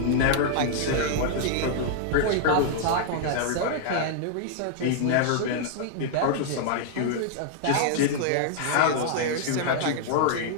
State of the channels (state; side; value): different; both; correlation -0.01